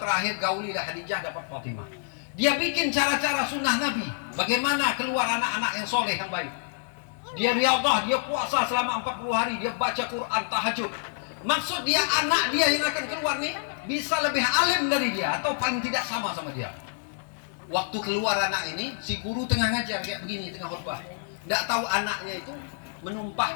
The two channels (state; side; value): silent; right; 60 dB below the other